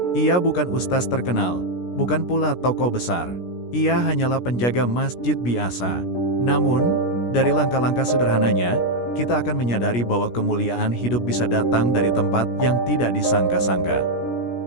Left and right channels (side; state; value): right; late; 17 ms